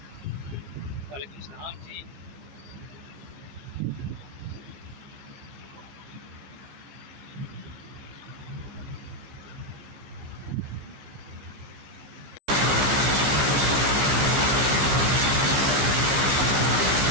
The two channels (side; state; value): left; late; 15 ms